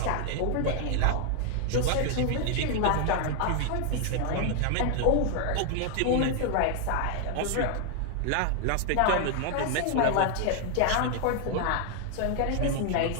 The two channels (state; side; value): different; both; correlation 0.00